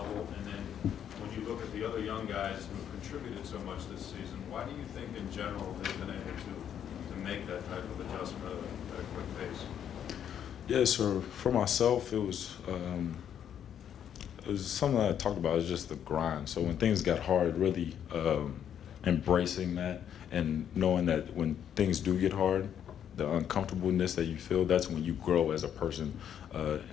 And then when you look at the other young guys who have contributed so much this season, why do you think in general they've been able to make that type of adjustment at a quick pace? Yeah, so for myself, it was something that I talked about. It's just the grind. So when things got hard, really embracing that and knowing that when things do get hard, the uncomfortableness that you feel, that's when you grow as a person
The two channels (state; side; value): quieter; right; 9.3 dB